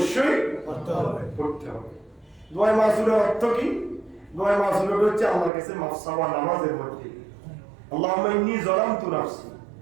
পড়তে হবে। দোয়া মাসুরার অর্থ কি? দোয়া মাসুরা হচ্ছে আল্লাহর কাছে মাফ চাওয়া নামাজের মধ্যে। আল্লাহুম্মা ইন্নী যালামতু নাফসি,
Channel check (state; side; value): drops out; left; at 5.5 s